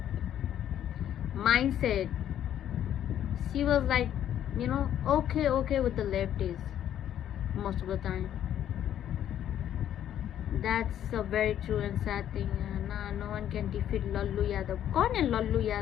mindset, she was like okay with the leftists most of the time. That's a very true and sad thing. No one can defeat Lallu Yadav. कौन है लल्लू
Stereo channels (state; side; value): quieter; right; 10.7 dB